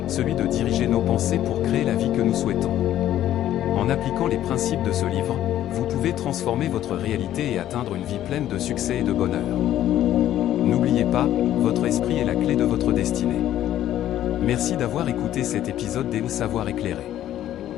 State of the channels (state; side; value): quieter; right; 12.3 dB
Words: celui de diriger nos pensées pour créer la vie que nous souhaitons. En appliquant les principes de ce livre, vous pouvez transformer votre réalité et atteindre une vie pleine de succès et de bonheur. N'oubliez pas, votre esprit est la clé de votre destinée. Merci d'avoir écouté cet épisode des Savoir éclairé.